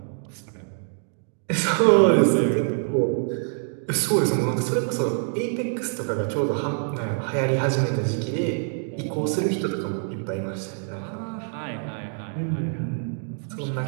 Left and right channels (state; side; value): silent; left; 62 dB below the other